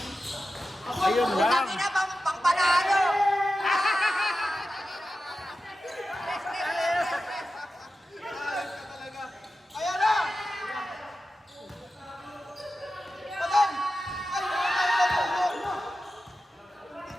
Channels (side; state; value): both; normal; correlation 0.92